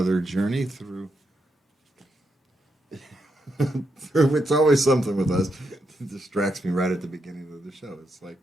journey through it's always something with us. It distracts me right at the beginning of the show. It's like,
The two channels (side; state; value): both; normal; correlation 0.82